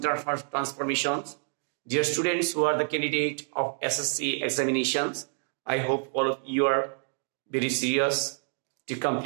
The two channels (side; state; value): left; silent; 59 dB below the other